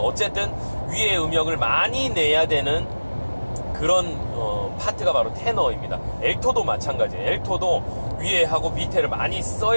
위에 음역을 많이 내야 되는 그런 파트가 바로 테너입니다. 엘토도 마찬가지예요. 엘토도 위에 하고 밑에를 많이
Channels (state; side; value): inverted; both; correlation -1.00